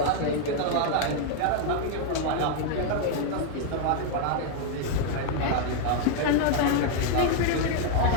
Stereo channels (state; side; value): different; both; correlation 0.00